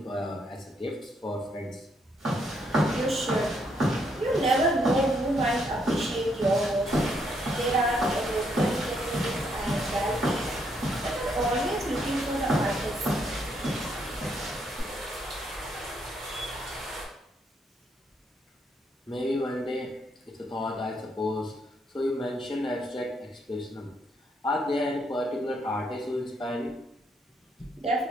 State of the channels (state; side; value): normal; both; correlation 0.74